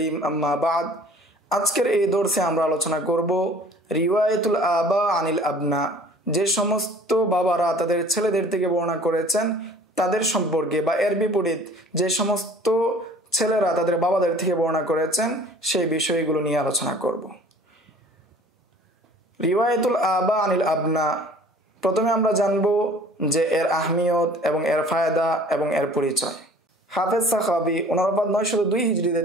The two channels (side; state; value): both; normal; correlation 0.49